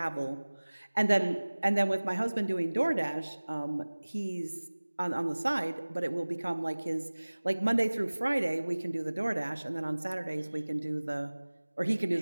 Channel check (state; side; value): inverted; both; correlation -1.00